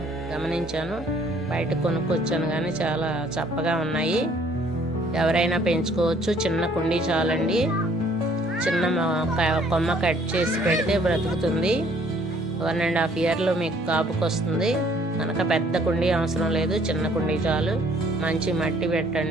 గమనించాను. బయట కొనుక్కొచ్చాను కానీ చాలా చప్పగా ఉన్నాయి. ఎవరైనా పెంచుకోవచ్చు. చిన్న కుండీ చాలండి. చిన్న కొమ్మ కట్ చేసి పెడితే బ్రతుకుతుంది. 1.5 ఇయర్లో మీకు కాపుకి వస్తుంది కనుక పెద్ద కుండీ అవసరం లేదు. చిన్న కుండీ చాలు. మంచి మట్టి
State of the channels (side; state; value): both; normal; correlation 0.61